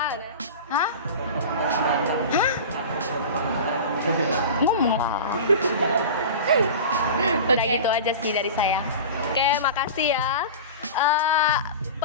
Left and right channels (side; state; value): both; inverted; correlation -0.32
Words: Hah? Ngomong lah. Udah gitu aja sih dari saya. Oke, makasih ya.